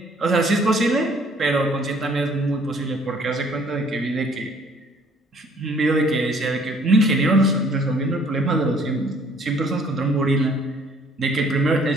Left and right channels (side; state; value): both; normal; correlation 0.59